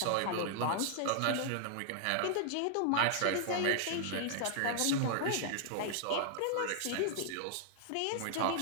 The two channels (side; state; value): both; different; correlation 0.00